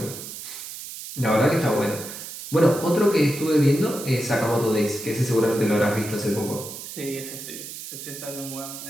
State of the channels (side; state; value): right; noise; hiss, 10 dB below the sound